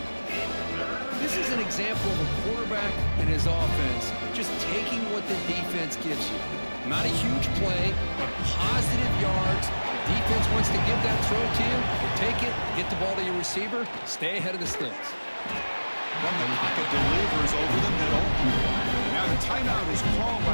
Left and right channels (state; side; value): inverted; both; correlation -1.00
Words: This is an example of a quarterback and his offense just taking what the defense gives you. Not a huge play, but positive yards. The defense wants to give that throw to you. You take it, get the ball to your receiver, stay ahead of the sticks. From the pocket, delivers over the middle. Now the timeout is called